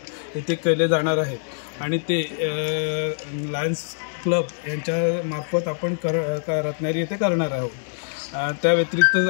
इथे केले जाणार आहेत आणि ते लायन्स क्लब यांच्या मार्फत आपण रत्नागिरी येथे करणार आहोत. त्या व्यतिरिक्त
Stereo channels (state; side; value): silent; right; digital silence